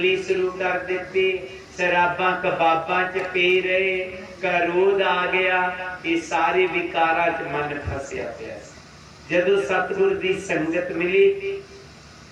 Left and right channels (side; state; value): both; identical; correlation 1.00